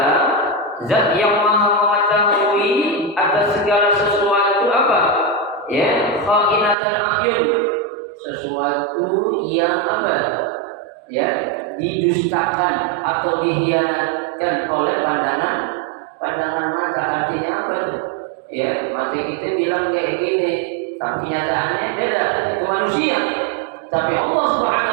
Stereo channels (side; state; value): left; drops out; at 6.8 s